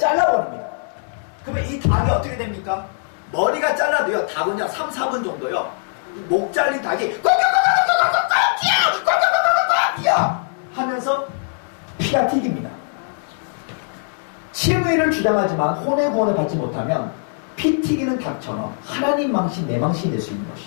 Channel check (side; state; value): right; silent; digital silence